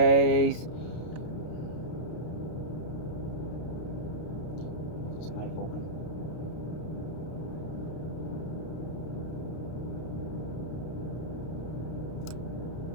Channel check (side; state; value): right; late; 32 ms